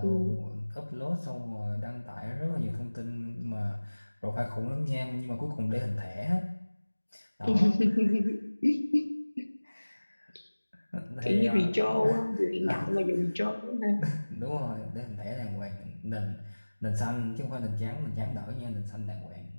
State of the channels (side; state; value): both; inverted; correlation -1.00